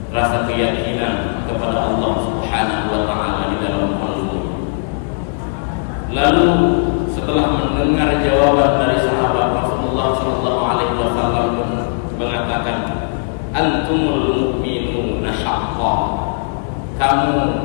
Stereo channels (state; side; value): silent; right; digital silence